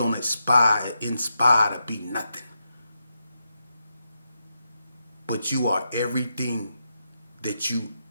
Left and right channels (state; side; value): inverted; both; correlation -0.85